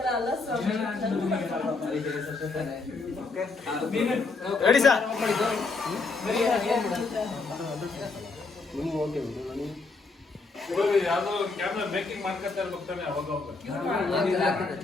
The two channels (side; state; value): right; quieter; 4.0 dB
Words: ಅಲ್ಲ ಸರ್. ರೆಡಿ ಸರ್ ಯಾವ್ದೋ ಕ್ಯಾಮ್ರಾ ಮೇಕಿಂಗ್ ಮಾಡ್ಕೊತಾ ಇರ್ಬೇಕಾನೆ ಅವಾಗ